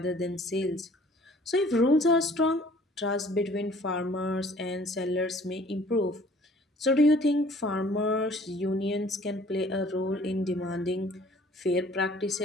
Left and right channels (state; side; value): normal; both; correlation 0.54